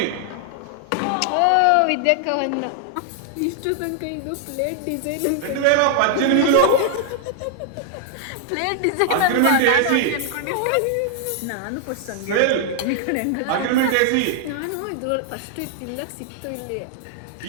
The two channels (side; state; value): both; different; correlation 0.00